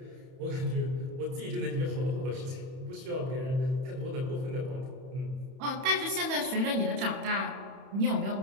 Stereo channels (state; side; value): late; left; 31 ms